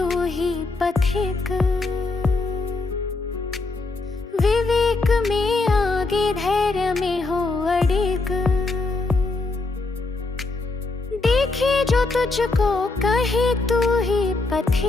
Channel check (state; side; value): quieter; right; 3.5 dB